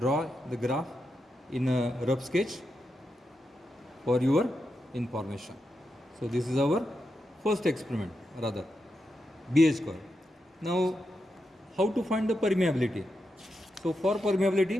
the graph in a rough sketch for your information. So this is our first experiment, rather BH curve. Now how to find the permeability? So for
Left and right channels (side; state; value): both; normal; correlation 0.86